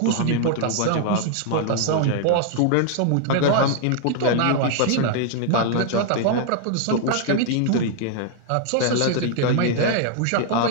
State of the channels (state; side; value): different; both; correlation 0.00